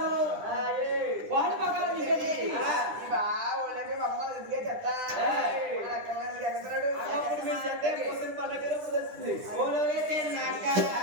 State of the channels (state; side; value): late; left; 9.9 ms